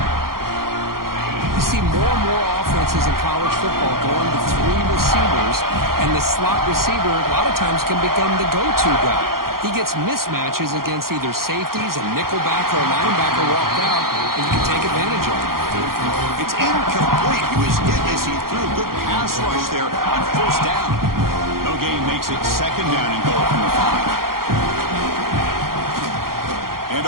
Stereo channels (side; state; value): left; late; 0.92 ms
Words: You see more and more offenses in college football going to 3 receivers, and the slot receiver a lot of times can become the go-to guy. He gets mismatches against either safeties, a nickelback, or a linebacker walked out, and you can take advantage of it. It's incomplete. He was hit as he threw a good pass rush there on first down. No gain makes it second down and goal from the 5. And